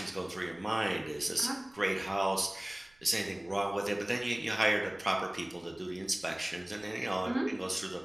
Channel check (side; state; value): right; noise; rumble, 30 dB below the sound